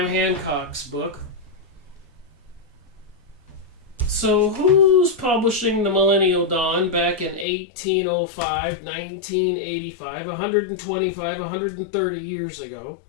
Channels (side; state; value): right; drops out; at 7.5 s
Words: Hancock's book. So who's publishing the Millennial Dawn back in 1805, 1985, 125, 130 years ago?